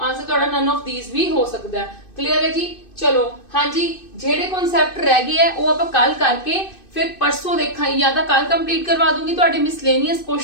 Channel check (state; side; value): late; right; 2.6 ms